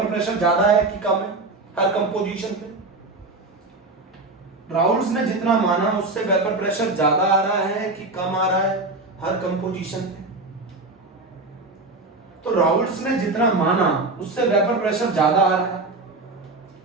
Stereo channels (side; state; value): left; quieter; 3.2 dB